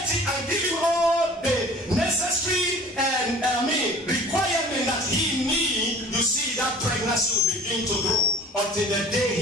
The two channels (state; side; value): normal; both; correlation 0.45